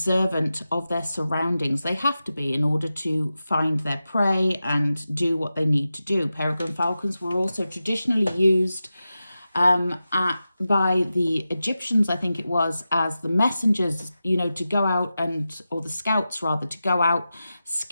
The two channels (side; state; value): both; inverted; correlation -0.92